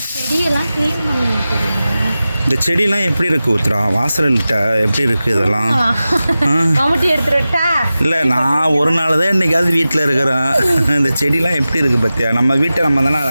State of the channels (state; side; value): inverted; both; correlation -0.95